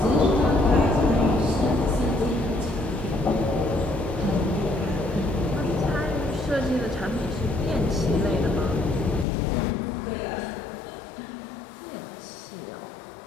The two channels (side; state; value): right; drops out; at 9.2 s